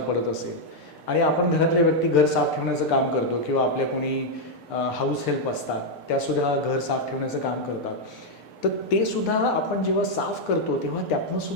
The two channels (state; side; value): late; right; 6.7 ms